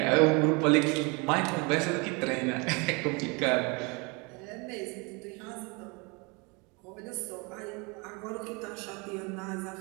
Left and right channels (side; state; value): left; quieter; 29.3 dB